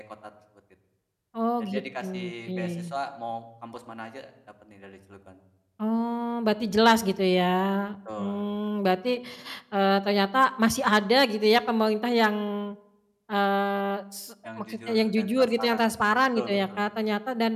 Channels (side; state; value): both; identical; correlation 1.00